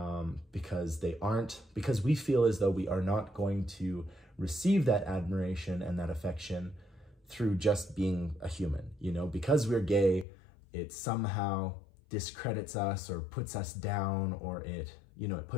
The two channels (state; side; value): drops out; right; at 10.2 s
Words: because we feel as though we are not going to receive that admiration and that affection through just being a human, you know, because we're gay, it somehow discredits us or puts us down, or it